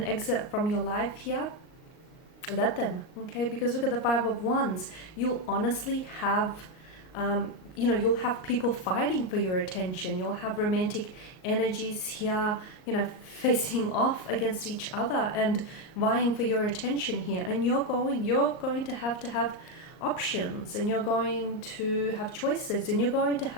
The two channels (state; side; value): late; right; 38 ms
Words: exit from your life here, let them, okay? Because look at the Five of Wands. You'll honestly have you'll have people fighting for your attention. You'll have romantic energies here, facing off against each other and vying for your attention here. And you're going to have options, and you're going to have choices, and you're going to